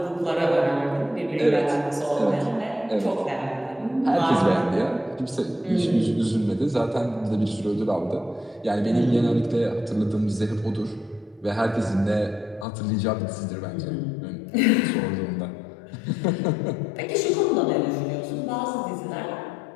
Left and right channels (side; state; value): right; drops out; at 12.7 s